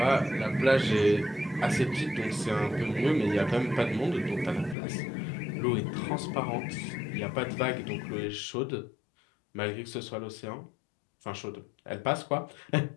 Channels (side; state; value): right; drops out; at 4.8 s